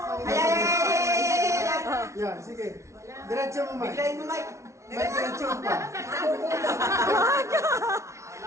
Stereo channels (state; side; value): late; left; 0.14 ms